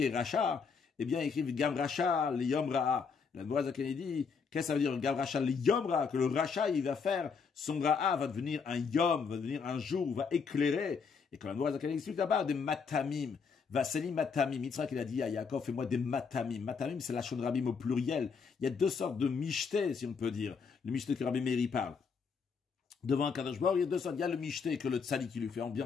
est racha, eh bien, il écrit Gam racha, li yom ra'a. La Gemara dit, qu'est-ce que ça veut dire, Gam racha, li yom ra'a, que le racha, il va faire, son ra'a va devenir un yom, va devenir un jour, va éclairer. Et quand la Gemara explique là-bas, des matamim. Vaseli matamim. Yitzhak, il a dit à Yaakov, fais-moi des matamim. Matamim, c'est la shon rabim au pluriel. Il y a 2 sortes de michté, si on peut dire. Le michté que Rabbi Meir parle. Devant un Kadosh Baruch Hu, il y a 2 sortes. Il y a le michté que le tzadi qui lui fait en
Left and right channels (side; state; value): right; quieter; 5.6 dB